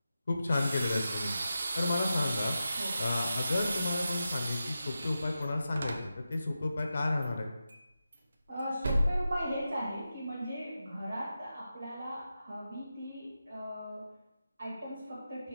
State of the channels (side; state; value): both; inverted; correlation -0.90